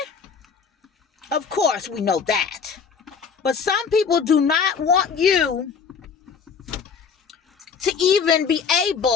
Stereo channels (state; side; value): quieter; right; 6.1 dB